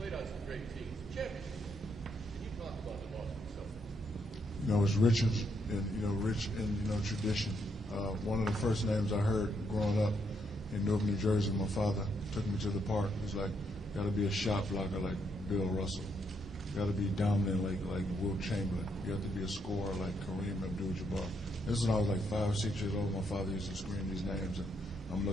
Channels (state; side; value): normal; both; correlation 0.76